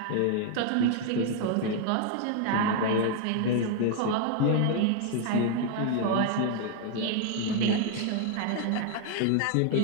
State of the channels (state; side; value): different; both; correlation 0.00